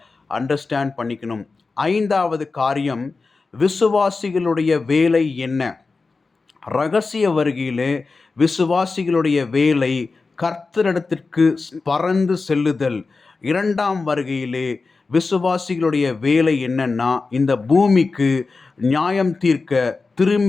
அண்டர்ஸ்டாண்ட் பண்ணிக்கணும். ஐந்தாவது காரியம், விசுவாசிகளுடைய வேலை என்ன? ரகசிய வருகையிலே விசுவாசிகளுடைய வேலை கர்த்தரிடத்திற்கு பறந்து செல்லுதல். இரண்டாம் வருகையிலே விசுவாசிகளுடைய வேலை என்னன்னா, இந்த பூமிக்கு நியாயம் தீர்க்க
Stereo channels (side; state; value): right; quieter; 4.1 dB